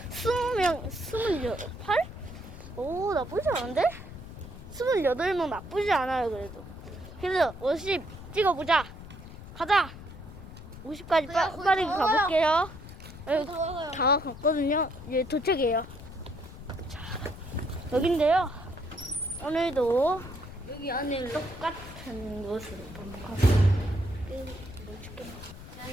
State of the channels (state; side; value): noise; left; rumble, 14 dB below the sound